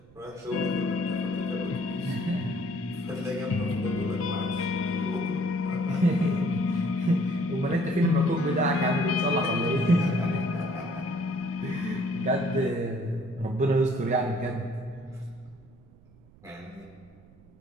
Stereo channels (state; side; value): noise; right; rumble, 25 dB below the sound